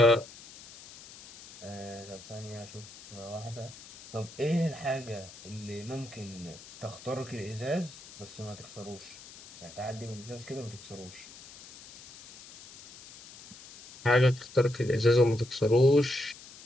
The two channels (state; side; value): noise; left; hiss, 18 dB below the sound